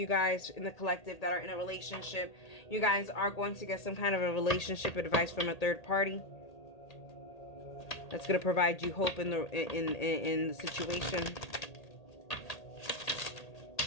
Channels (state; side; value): late; right; 1.8 ms